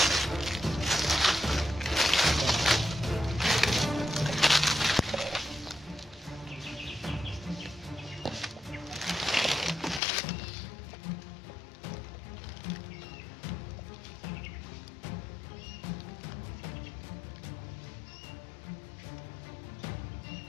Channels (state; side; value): drops out; right; at 10.0 s